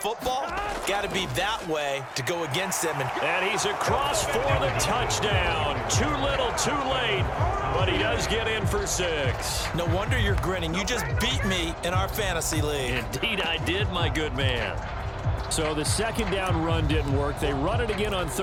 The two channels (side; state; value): both; identical; correlation 1.00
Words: got to be that way to go against them. And he's across for the touchdown. Too little, too late, but he does get in for 6. No wonder you're grinning. You just beat me in our fantasy league. Indeed I did, my good man. So the second down run didn't work. They run it again on